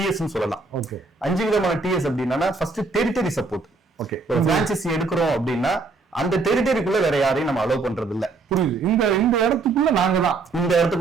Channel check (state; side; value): quieter; left; 3.9 dB